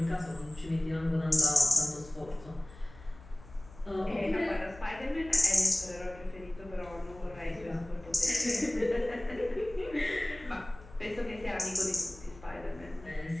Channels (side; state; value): left; noise; hum, 20 dB below the sound